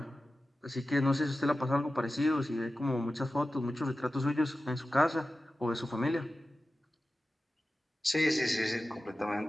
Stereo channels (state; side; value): normal; both; correlation 0.94